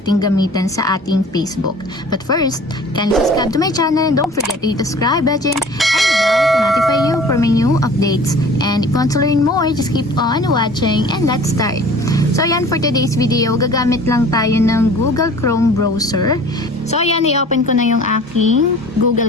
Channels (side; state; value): both; normal; correlation 0.46